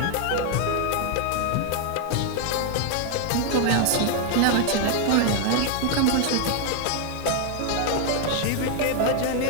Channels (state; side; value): different; both; correlation 0.00